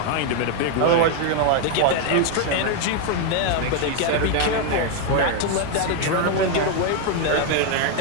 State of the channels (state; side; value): different; both; correlation 0.01